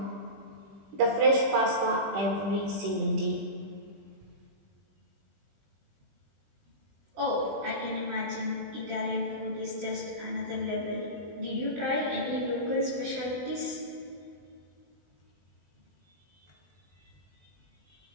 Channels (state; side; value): late; left; 20 ms